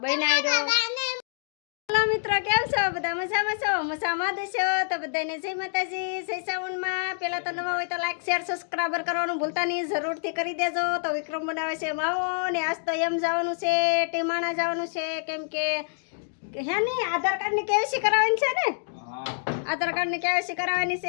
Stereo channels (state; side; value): silent; right; digital silence